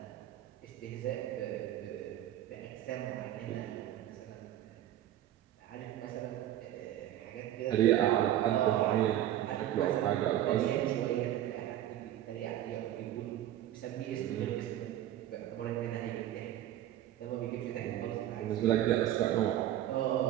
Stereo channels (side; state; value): left; quieter; 12.5 dB